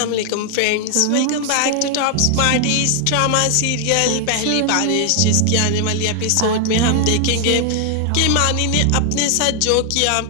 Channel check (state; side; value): different; both; correlation 0.00